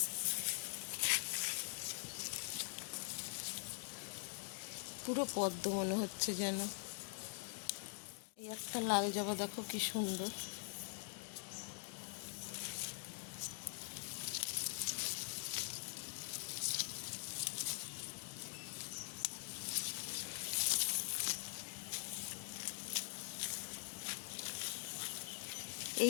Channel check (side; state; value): right; silent; digital silence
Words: পুরো পদ্ম মনে হচ্ছে যেন। এই একটা লাল জবা দেখো কি সুন্দর।